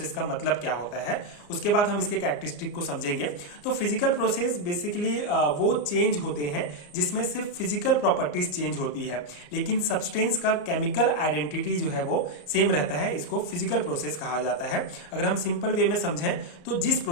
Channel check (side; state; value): right; late; 34 ms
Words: का मतलब क्या होता है। उसके बाद हम इसके कैरेक्टरिस्टिक को समझेंगे। तो फिजिकल प्रोसेस बेसिकली वो चेंज होते हैं जिसमें सिर्फ फिजिकल प्रॉपर्टीज चेंज होती है, लेकिन सब्सटेंस का केमिकल आइडेंटिटी जो है वो सेम रहता है। इसको फिजिकल प्रोसेस कहा जाता है। अगर हम सिंपल वे में समझें तो जिस